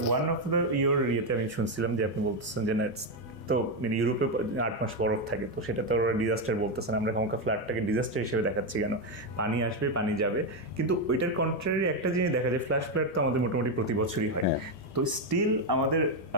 ওয়ান অফ দ্য ইয়েতে আমি শুনছিলাম যে আপনি বলতেছেন যে তো মানে ইউরোপে 8 মাস বরফ থাকে, তো সেটা তো ওরা ডিজাস্টার বলতেছেন, আমরা কখনো ফ্লাডটাকে ডিজাস্টার হিসেবে দেখাচ্ছি কেন? পানি আসবে, পানি যাবে, কিন্তু ওইটার কন্ট্রারি একটা জিনিস দেখা যায়, ফ্ল্যাশ ফ্লাড তো আমাদের মোটামুটি প্রতি বছরই হয়। তো স্টিল আমাদের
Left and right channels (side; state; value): both; normal; correlation 0.06